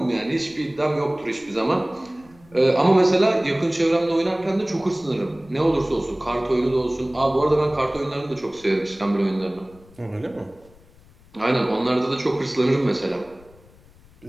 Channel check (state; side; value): noise; left; rumble, 26 dB below the sound